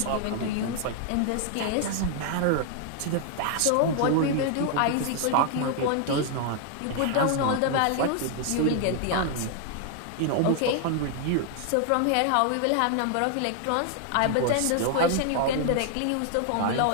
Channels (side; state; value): both; different; correlation 0.00